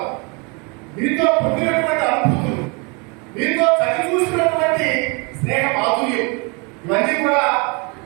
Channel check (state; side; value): quieter; left; 31.5 dB